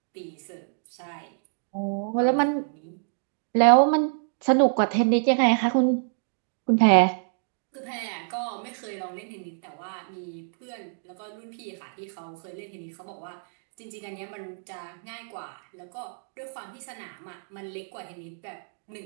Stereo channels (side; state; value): left; silent; digital silence